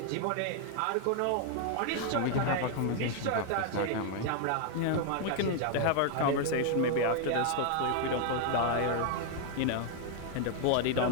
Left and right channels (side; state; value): both; different; correlation 0.00